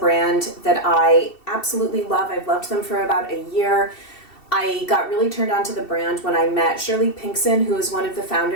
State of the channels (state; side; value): late; right; 2.7 ms